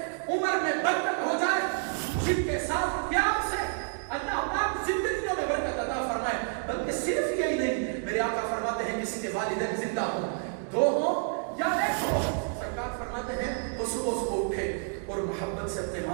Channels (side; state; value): left; silent; 58 dB below the other